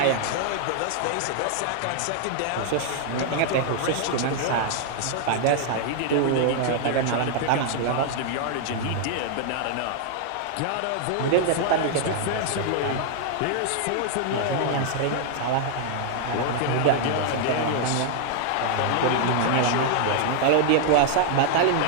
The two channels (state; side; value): different; both; correlation -0.01